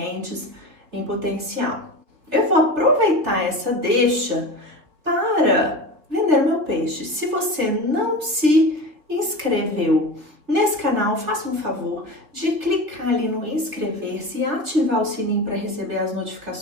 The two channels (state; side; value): late; left; 3.5 ms